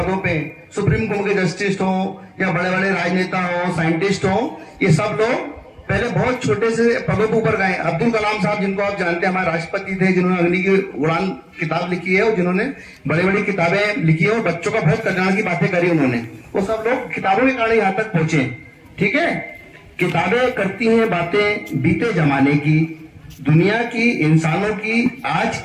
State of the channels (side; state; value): both; identical; correlation 1.00